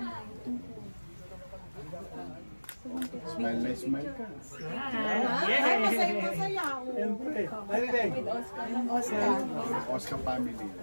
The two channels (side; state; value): both; inverted; correlation -1.00